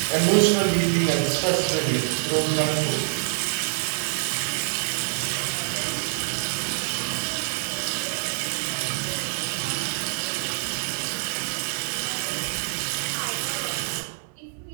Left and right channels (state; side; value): silent; left; 58 dB below the other